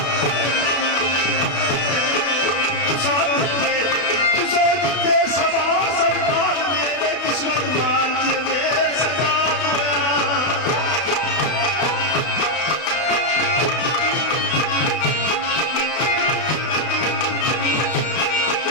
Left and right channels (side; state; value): right; late; 32 ms